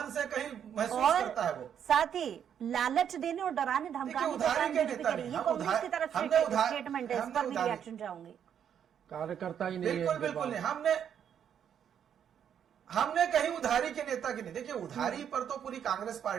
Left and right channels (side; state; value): left; quieter; 8.7 dB